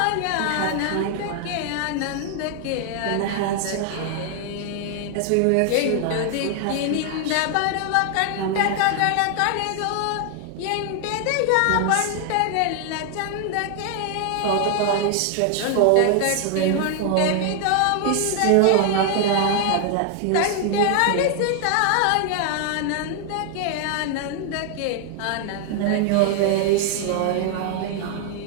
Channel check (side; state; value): both; different; correlation 0.00